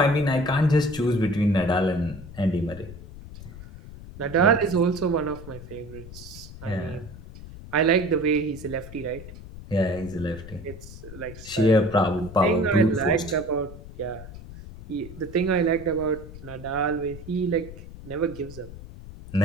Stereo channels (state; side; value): noise; left; rumble, 14 dB below the sound